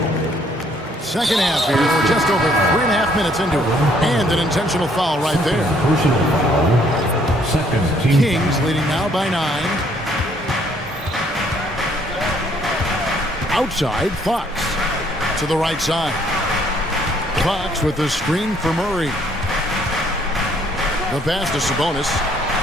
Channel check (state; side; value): normal; both; correlation 0.65